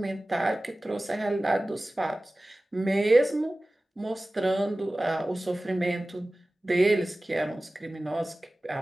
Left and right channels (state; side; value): normal; both; correlation 0.97